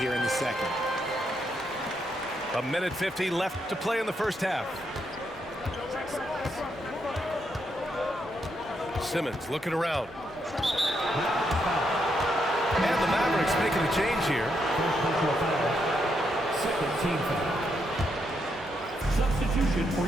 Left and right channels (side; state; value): both; normal; correlation 0.79